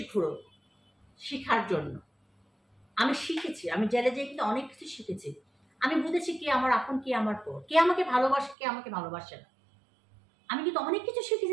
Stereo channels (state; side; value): drops out; left; at 8.6 s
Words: ঘুরো শিখার জন্য। আমি শিখেছি, আমি জেলে যেয়ে কিন্তু অনেক কিছু শিখেছি। আমি বুঝেছি কে আমার আপন, কে আমার পর, কে আমাকে ভালোবাসে, কে আমাকে ভালোবাসে না। আমি কিন্তু অনেক কিছু